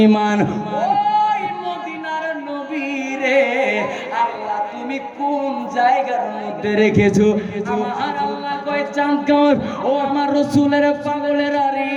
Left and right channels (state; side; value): identical; both; correlation 1.00